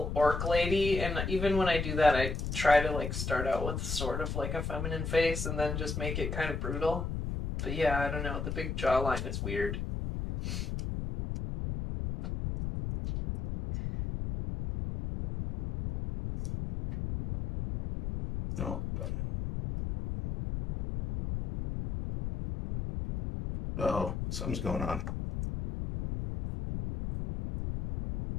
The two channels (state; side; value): noise; left; rumble, 3 dB below the sound